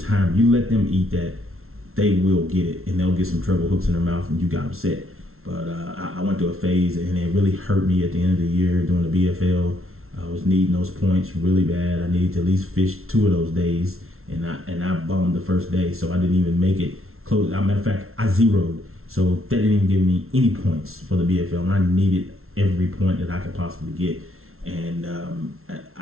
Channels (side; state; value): left; late; 0.62 ms